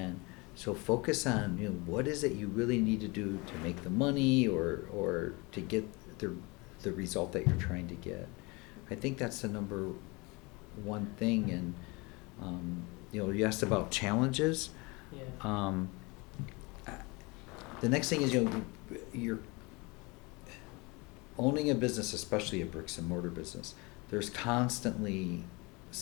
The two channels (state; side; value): quieter; right; 26.6 dB